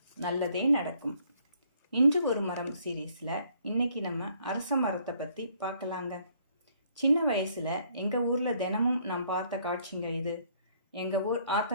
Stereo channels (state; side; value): inverted; both; correlation -0.65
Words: நல்லதே நடக்கும். இன்று ஒரு மரம் சீரீஸில் இன்னைக்கு நம்ம அரச மரத்தை பற்றி பார்க்கலாங்க. சின்ன வயசில் எங்கள் ஊரில் தினமும் நான் பார்த்த காட்சிங்க இது. எங்கள் ஊர்